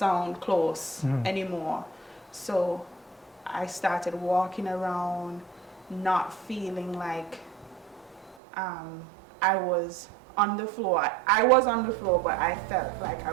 close anymore. So I started walking around, not feeling like I was on the floor. I was on the floor, but I felt like I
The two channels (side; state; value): left; drops out; at 8.3 s